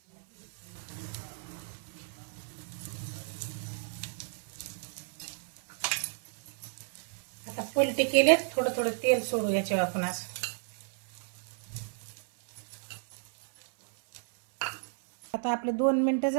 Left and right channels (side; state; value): left; silent; 56 dB below the other